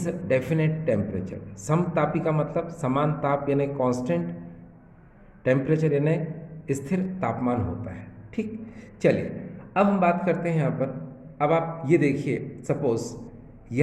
definite temperature. समतापी का मतलब समान ताप यानी कांस्टेंट टेम्परेचर यानी स्थिर तापमान होता है। ठीक, चलिए अब हम बात करते हैं यहाँ पर। अब आप ये देखिए, सपोज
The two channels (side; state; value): both; identical; correlation 1.00